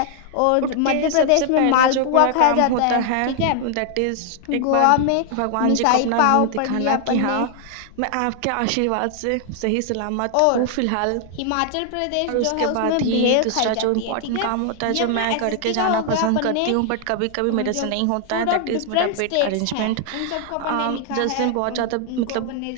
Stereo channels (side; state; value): both; different; correlation 0.00